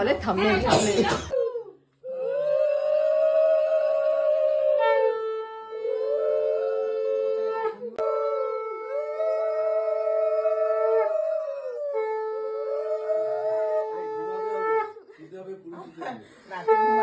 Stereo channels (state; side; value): identical; both; correlation 1.00